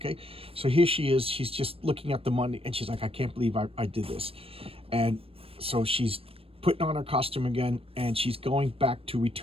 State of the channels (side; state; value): left; late; 0.28 ms